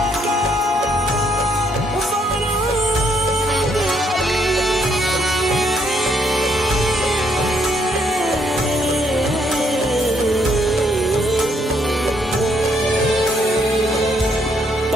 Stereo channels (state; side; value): normal; both; correlation 0.71